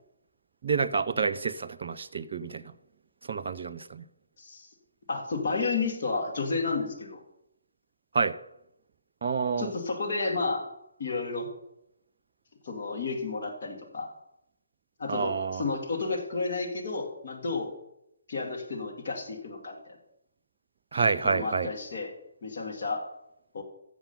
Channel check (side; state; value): both; inverted; correlation -0.68